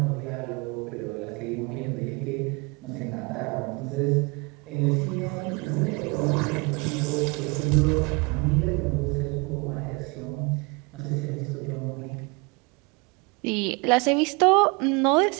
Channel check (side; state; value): left; quieter; 29.0 dB